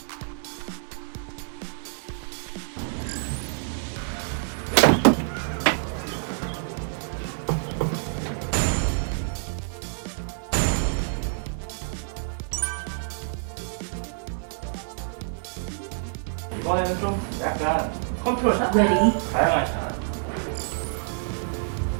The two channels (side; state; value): left; silent; digital silence